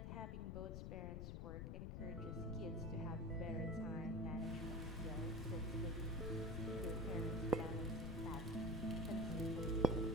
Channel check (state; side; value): noise; left; rumble, 4 dB below the sound